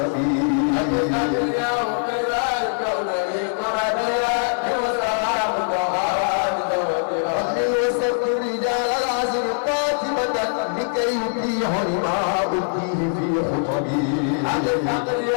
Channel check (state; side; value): silent; right; 57 dB below the other